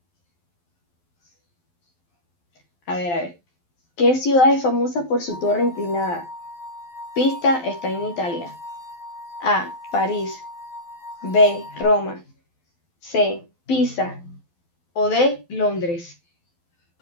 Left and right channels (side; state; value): right; late; 12 ms